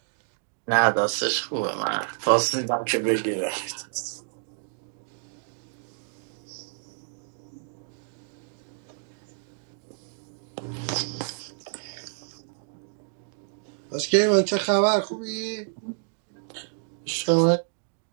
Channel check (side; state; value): left; silent; digital silence